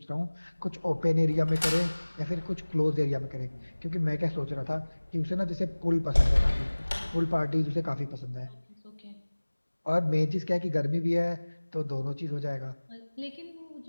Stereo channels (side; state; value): both; inverted; correlation -1.00